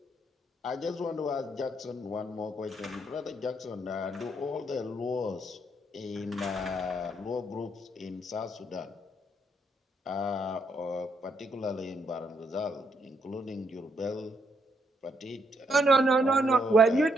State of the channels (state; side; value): normal; both; correlation 0.74